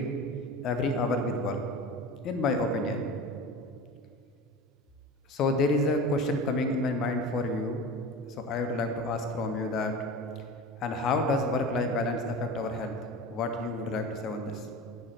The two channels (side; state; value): both; normal; correlation 0.32